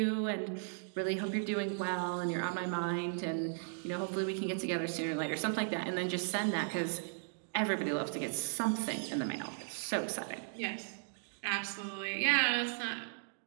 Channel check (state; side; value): silent; left; digital silence